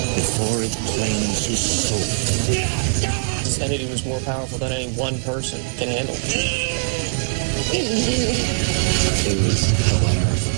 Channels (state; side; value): silent; left; digital silence